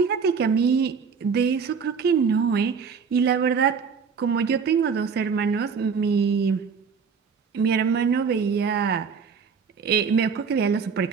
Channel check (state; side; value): quieter; left; 5.9 dB